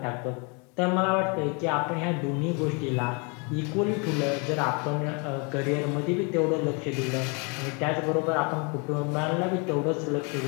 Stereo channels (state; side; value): quieter; right; 33.0 dB